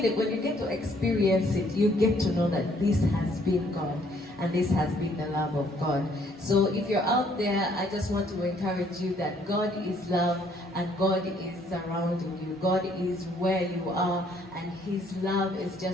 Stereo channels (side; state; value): both; normal; correlation 0.64